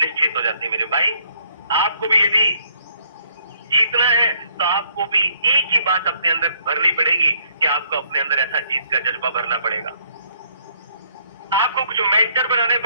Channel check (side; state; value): both; inverted; correlation -0.66